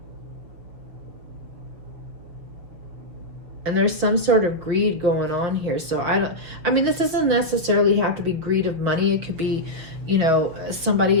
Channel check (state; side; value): late; left; 6.3 ms